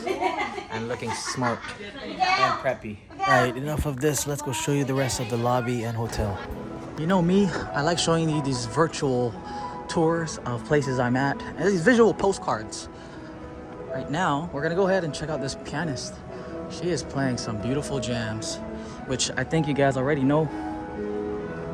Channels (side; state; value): both; identical; correlation 1.00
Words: and looking smart and preppy. Alright, enough of this. Let's go show you the rest of the lobby and hotel. You know me, I like showing you these virtual tours of places I'm at and these visual postcards. Right now, we're gonna go ahead and check out this pianist. She is playing some beautiful jams, which I think you guys already know.